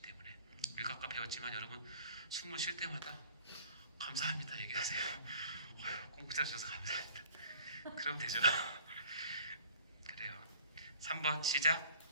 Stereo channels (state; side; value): inverted; both; correlation -0.49